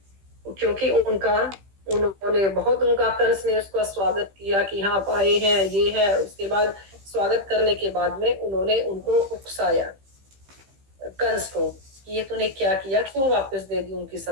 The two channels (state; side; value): late; left; 15 ms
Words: क्योंकि उन्होंने बहुत उनका कंस ने उसका स्वागत किया कि हाँ आप आए हैं, ये है। उसके बाद स्वागत करने के बाद में उन्होंने उनको उकसाया कंस को, ये तूने क्या किया, क्यों वापस दे दी उनकी